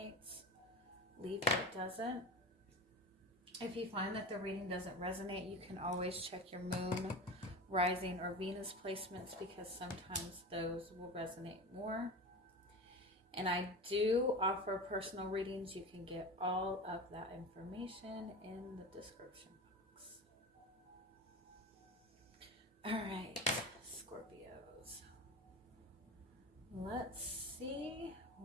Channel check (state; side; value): normal; both; correlation 0.28